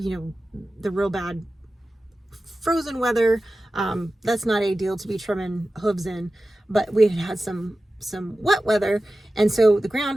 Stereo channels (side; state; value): both; normal; correlation 0.94